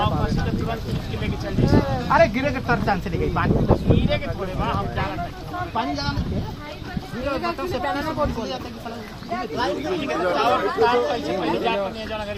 बस के तुरंत उसके लेके चल जाए अरे गिरे के तर चांस नहीं गई पानी गिरे के थोड़े वहां हम जा रहे हैं पानी लगा नहीं बताओ से पहले ना कौन जाता है टावर तार कैसे पहले जाकर नहीं जाना घर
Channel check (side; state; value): both; identical; correlation 1.00